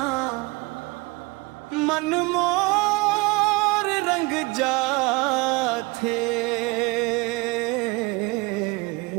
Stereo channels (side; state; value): left; quieter; 25.2 dB